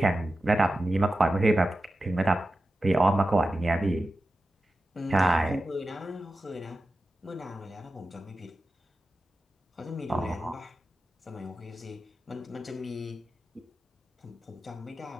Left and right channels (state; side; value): normal; both; correlation 0.92